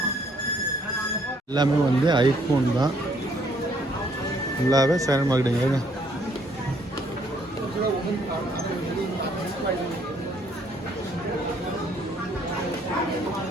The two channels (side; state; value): both; normal; correlation 0.66